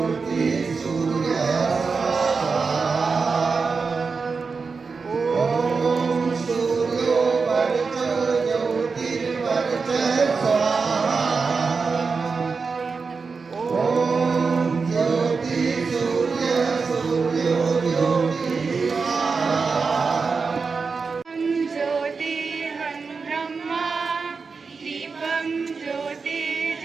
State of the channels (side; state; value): left; quieter; 4.8 dB